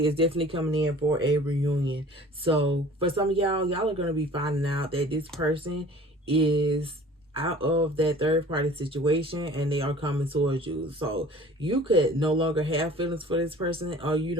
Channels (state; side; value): normal; both; correlation 0.47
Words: is definitely coming in for a reunion. So for some of y'all, y'all are going to be finding out that this person is out of that third party situation and they are coming towards you. So you could no longer have feelings for this person, or